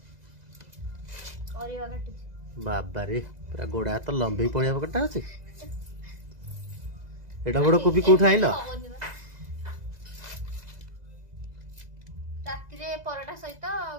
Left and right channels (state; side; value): late; left; 2.0 ms